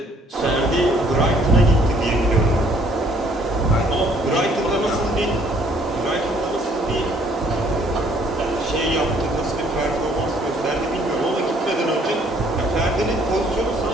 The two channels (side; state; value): both; normal; correlation 0.62